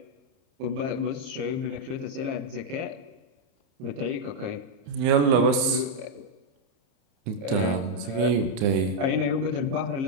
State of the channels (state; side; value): late; left; 30 ms